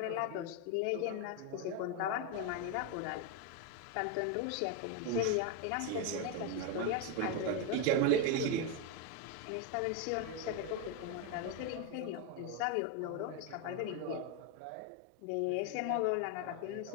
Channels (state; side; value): different; both; correlation 0.02